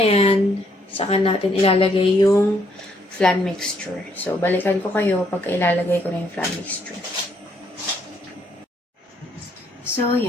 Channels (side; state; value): both; normal; correlation 0.70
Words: yan, saka natin ilalagay yung flan mixture. So, balikan ko kayo pag ilalagay ko na yung flan mixture. So,